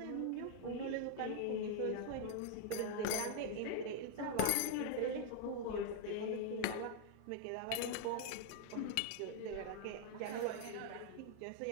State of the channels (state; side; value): different; both; correlation 0.00